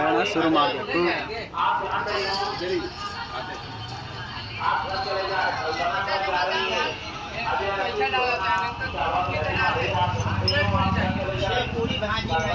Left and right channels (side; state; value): both; identical; correlation 1.00